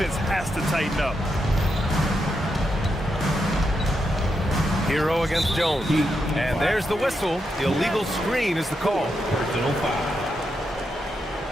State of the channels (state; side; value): normal; both; correlation 0.84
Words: has to tighten up. Hero against Jones. And there's the whistle. The illegal screen is the call. Personal foul.